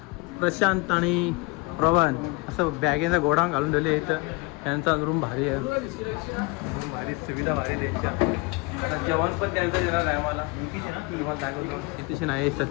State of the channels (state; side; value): quieter; right; 26.6 dB